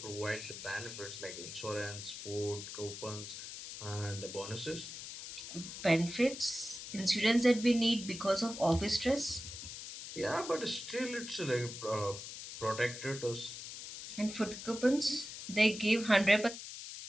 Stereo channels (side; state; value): left; noise; hiss, 10 dB below the sound